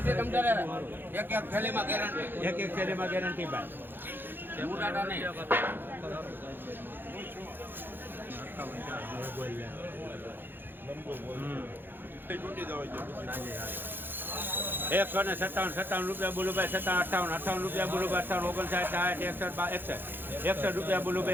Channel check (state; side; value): late; left; 0.098 ms